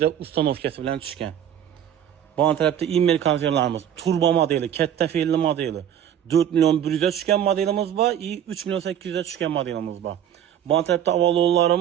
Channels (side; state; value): left; quieter; 9.9 dB